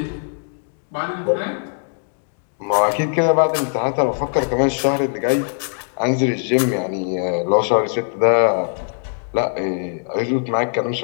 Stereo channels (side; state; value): right; silent; digital silence